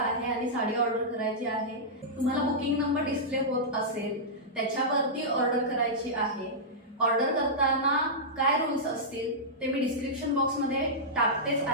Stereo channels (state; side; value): normal; both; correlation -0.12